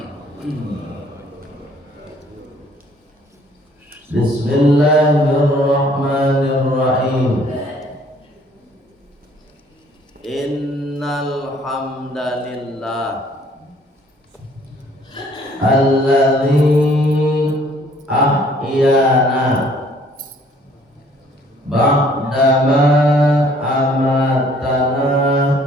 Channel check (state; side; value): normal; both; correlation 0.59